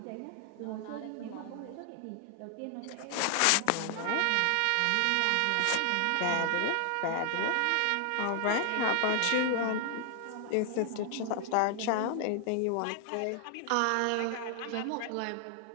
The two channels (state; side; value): different; both; correlation 0.00